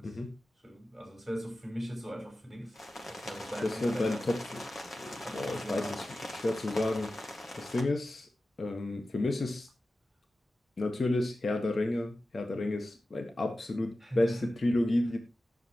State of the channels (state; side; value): normal; both; correlation 0.94